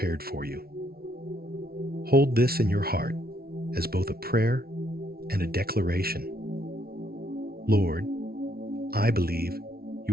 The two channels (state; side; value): late; left; 0.44 ms